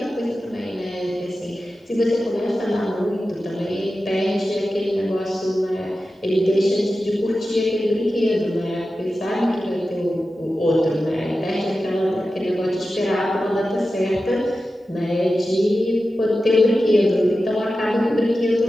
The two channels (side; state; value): both; normal; correlation 0.93